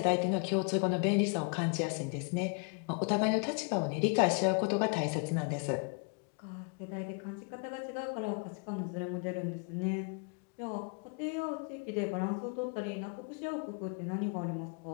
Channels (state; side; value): quieter; right; 36.9 dB